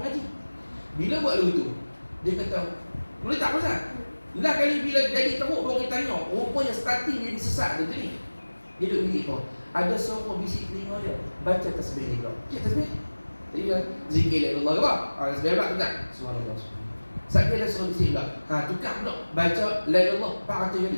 Bila buat begitu, dia kata, boleh tak pasal? Lah kali bila jadi teruk baru kita tanya, rupanya starting dia sesat dia ni. Dia duduk bilik kau. Ada seorang bisik telinga dia, baca tasbih ni kau. Cik tasbih? Jadi dia zikir la ilaha illallah. Tasbih pula tukar. Subhanallah. Saat dia dah suruh bisik pula. Tukar pula. Baca la ilaha illallah 400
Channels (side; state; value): both; inverted; correlation -1.00